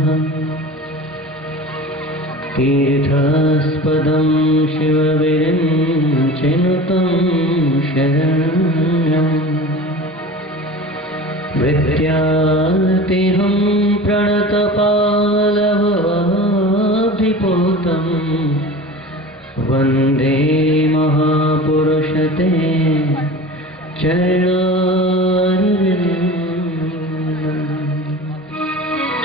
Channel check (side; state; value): both; normal; correlation 0.36